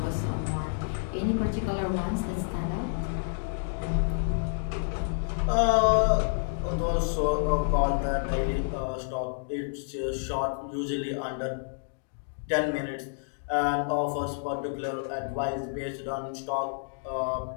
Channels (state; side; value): silent; right; digital silence